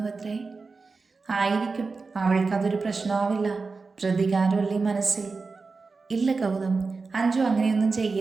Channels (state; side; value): quieter; left; 4.2 dB